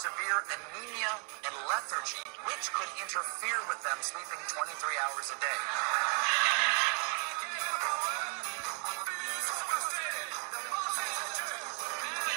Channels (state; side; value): quieter; left; 37.8 dB